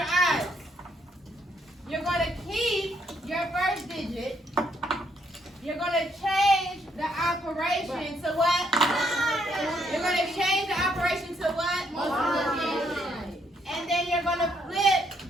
eyes. You're going to keep your first digit. You're going to change the operation to what? You're going to change the operation to what? Multiplication. And then you're going to flip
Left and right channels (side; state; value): both; normal; correlation 0.72